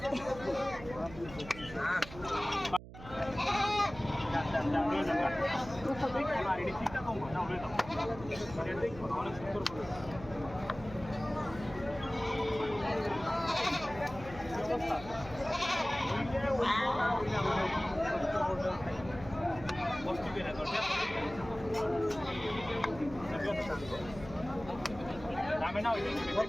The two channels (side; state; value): right; noise; hum, 15 dB below the sound